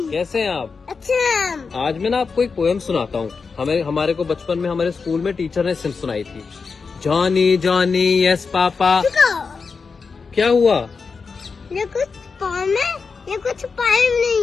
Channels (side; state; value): right; quieter; 5.0 dB